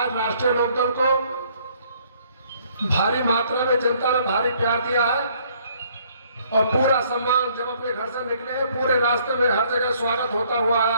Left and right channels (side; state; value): both; inverted; correlation -0.63